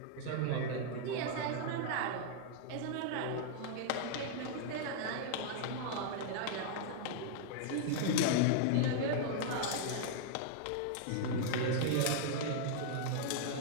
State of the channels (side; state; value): both; different; correlation -0.01